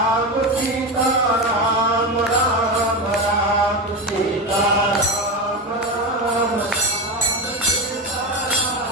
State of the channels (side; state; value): both; normal; correlation 0.18